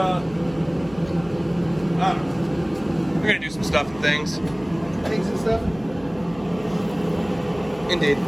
don't know. We're gonna do some stuff and things. Things and stuff. Indeed.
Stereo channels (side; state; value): right; noise; hum, 20 dB below the sound